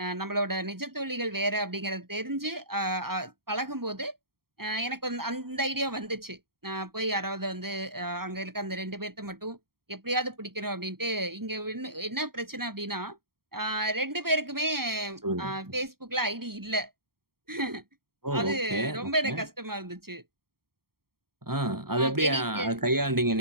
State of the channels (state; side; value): late; left; 0.94 ms